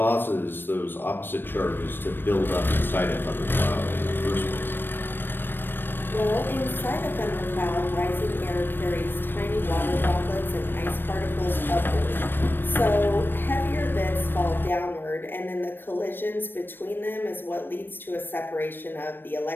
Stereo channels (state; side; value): late; right; 0.096 ms